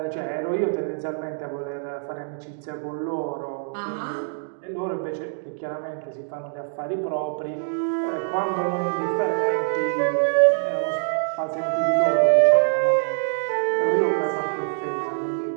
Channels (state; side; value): silent; left; digital silence